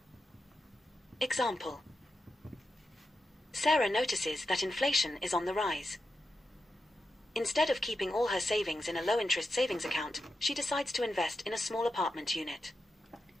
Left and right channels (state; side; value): normal; both; correlation 0.89